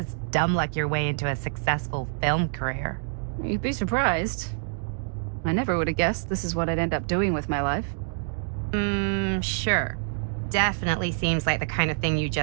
dumb luck your way into a successful film career. You'd be surprised. I never would have guessed this is what I'd end up doing with my life. Sure. Definitely seems like the kind of thing you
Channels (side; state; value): left; silent; digital silence